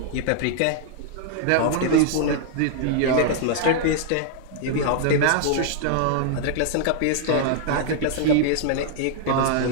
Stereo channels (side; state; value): both; different; correlation -0.01